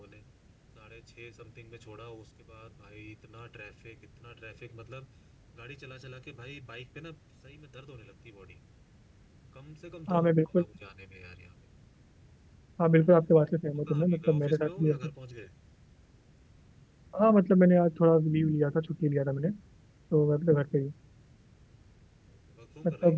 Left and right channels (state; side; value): identical; both; correlation 1.00